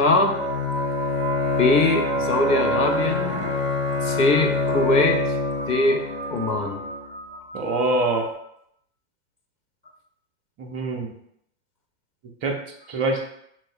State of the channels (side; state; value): left; late; 1.6 ms